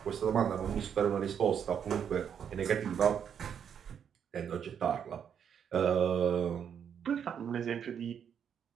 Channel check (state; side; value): quieter; left; 8.1 dB